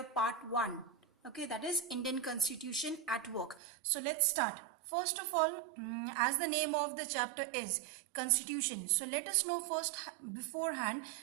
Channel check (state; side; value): drops out; left; at 3.6 s